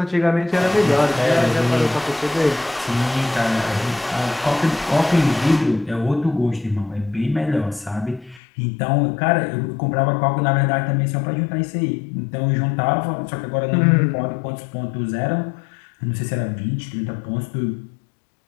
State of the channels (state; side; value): drops out; right; at 8.4 s